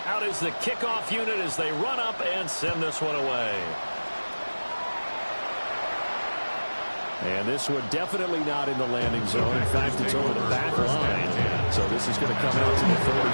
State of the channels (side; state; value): both; inverted; correlation -1.00